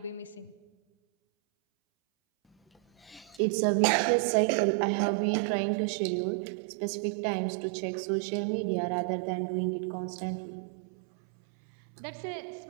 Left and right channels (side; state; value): left; drops out; at 3.4 s